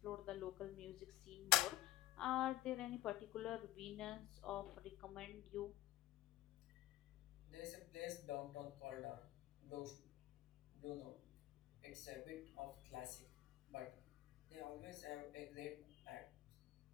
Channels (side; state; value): right; quieter; 15.4 dB